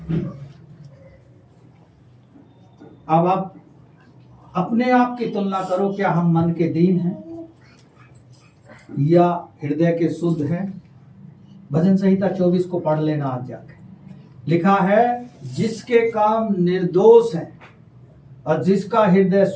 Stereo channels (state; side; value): identical; both; correlation 1.00